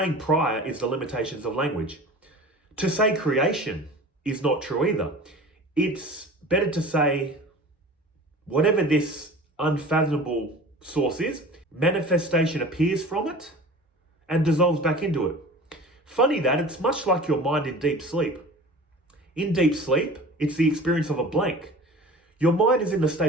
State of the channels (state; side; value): normal; both; correlation 0.40